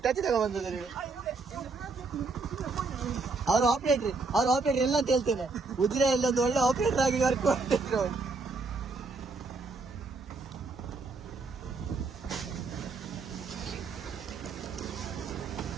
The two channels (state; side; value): quieter; left; 4.0 dB